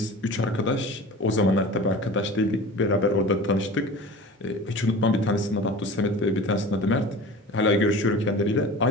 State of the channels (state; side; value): normal; both; correlation 0.37